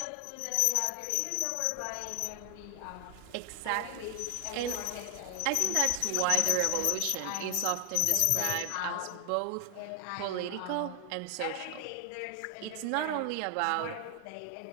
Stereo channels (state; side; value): different; both; correlation 0.00